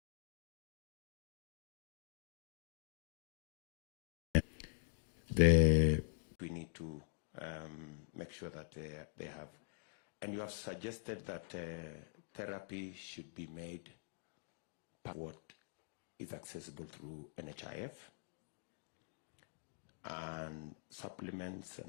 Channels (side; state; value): right; silent; digital silence